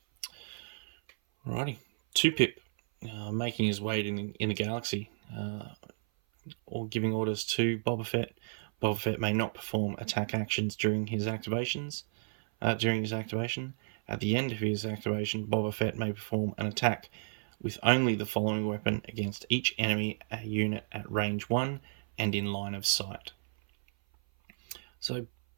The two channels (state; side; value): silent; left; 56 dB below the other